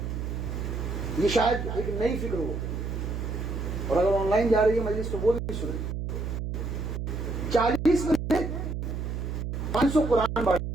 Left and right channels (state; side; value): noise; right; hum, 4 dB below the sound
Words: یہ شاید ایک نئی فکر ہو، اور اگر آن لائن جا رہی ہے مجلس تو وہ بھی سنیں. 40 میں 500 قرآن